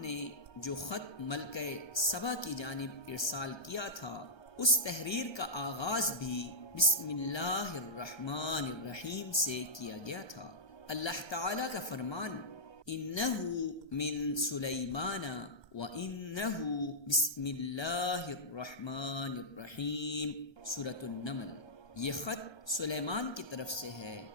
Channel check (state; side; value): late; right; 1.3 ms